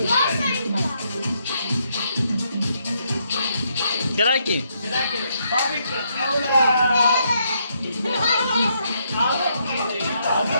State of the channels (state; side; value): inverted; both; correlation -0.75